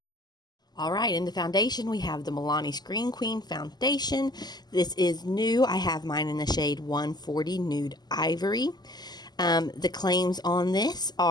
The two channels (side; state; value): right; late; 0.20 ms